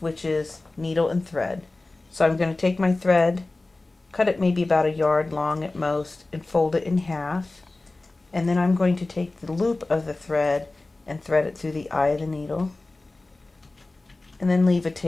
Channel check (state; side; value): quieter; right; 3.1 dB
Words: is needle and thread. So I'm going to take my thread, cut it maybe about a yard long at most, and fold it in half. And then I'm going to take the loop of the thread and thread it through the eye of the needle, and then leave a